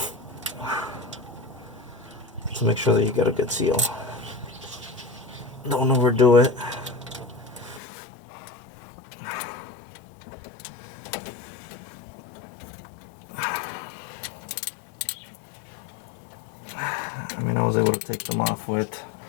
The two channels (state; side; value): drops out; right; at 7.8 s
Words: to make sure that you get a good seal. Don't overdo it. I mean, I was able to take them off with